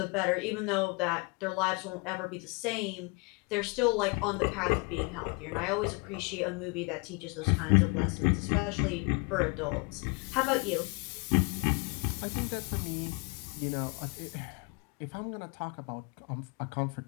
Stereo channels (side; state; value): right; quieter; 30.5 dB